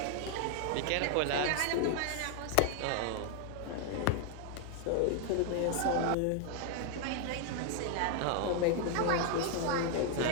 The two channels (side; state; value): both; different; correlation 0.00